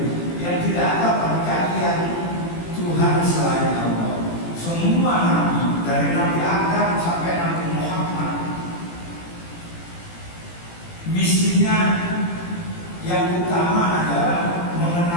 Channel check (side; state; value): right; late; 18 ms